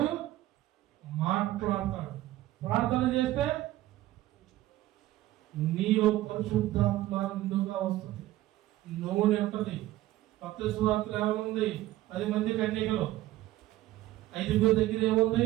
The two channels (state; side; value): quieter; left; 15.5 dB